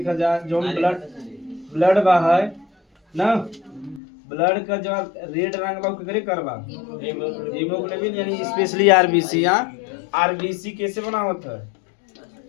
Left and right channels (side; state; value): right; drops out; at 4.0 s